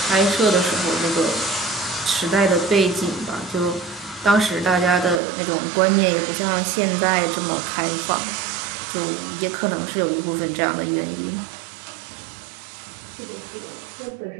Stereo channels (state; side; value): drops out; left; at 5.2 s